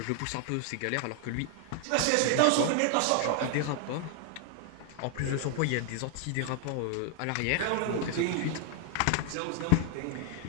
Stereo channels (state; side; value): different; both; correlation 0.00